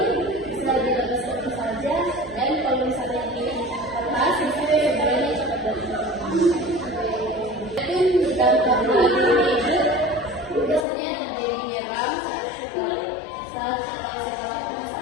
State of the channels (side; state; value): right; drops out; at 10.9 s